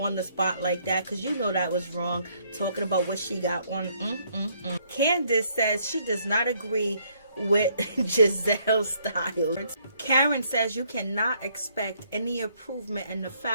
the spot like that? Because you know that was wrong, talking about what she got on. Candice says she does not agree with Gizelle's style. Karen says you cannot expect any improvement in the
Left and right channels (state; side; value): inverted; both; correlation -0.68